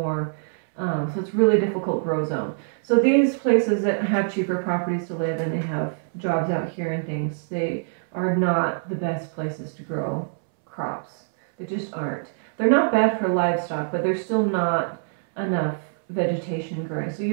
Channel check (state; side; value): silent; left; 62 dB below the other